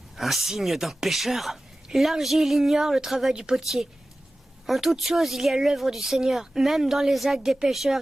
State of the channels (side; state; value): both; normal; correlation 0.96